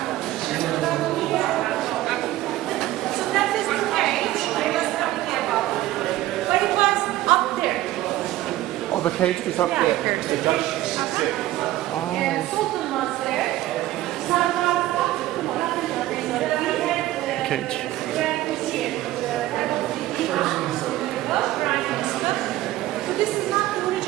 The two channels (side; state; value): left; quieter; 15.5 dB